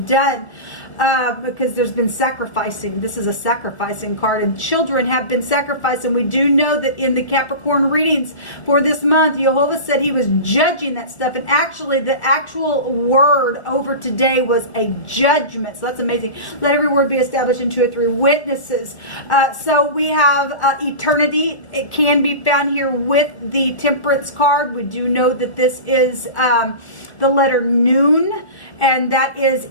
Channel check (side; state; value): right; late; 1.4 ms